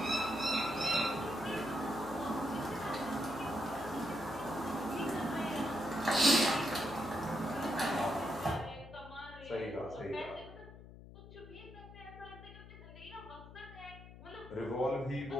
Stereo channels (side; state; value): left; noise; hum, 16 dB below the sound